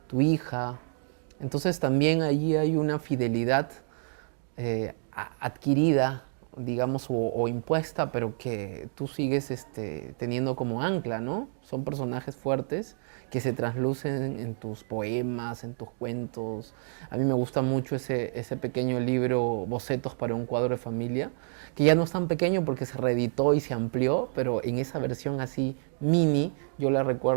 tu hija. Entonces también allí hay una fidelidad adquirida, digamos, o impuesta, pero que tú sigues teniendo como ancla, ¿no? Son personajes fuertes que se traslucen en tus poemas, en tus cuentos. A mí me gusta mucho ese pequeño libro, Bocetos para un cuadro de familia, que ya no es tan pequeño porque se reeditó y se amplió, pero en esa versión así mini, yo la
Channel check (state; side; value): silent; left; digital silence